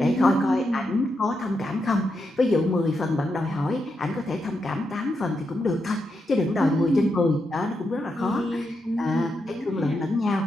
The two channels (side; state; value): both; normal; correlation 0.84